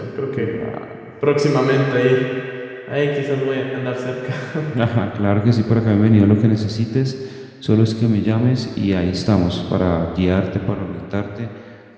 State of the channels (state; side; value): identical; both; correlation 1.00